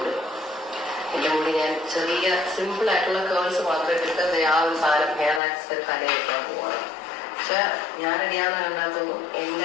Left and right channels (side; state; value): right; drops out; at 5.4 s